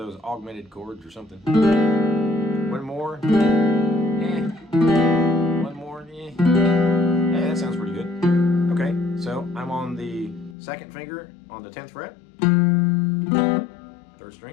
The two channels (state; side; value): drops out; right; at 10.6 s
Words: augmented chords or something. One more. One more. Hey, that sounds pretty good. Okay, so I'm on the 2nd finger on the 10th fret, 3rd